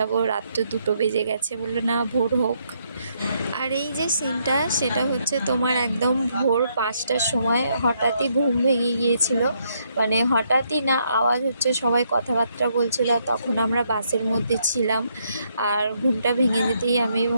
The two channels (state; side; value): inverted; both; correlation -0.74